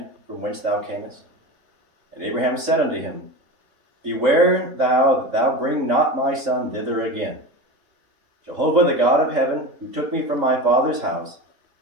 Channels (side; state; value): left; late; 3.8 ms